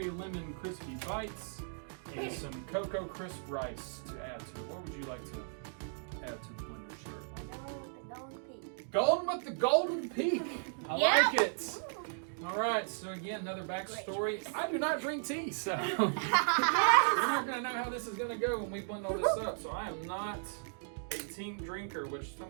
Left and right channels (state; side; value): silent; left; digital silence